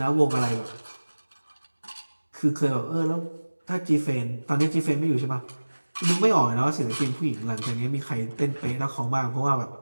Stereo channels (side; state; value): both; inverted; correlation -1.00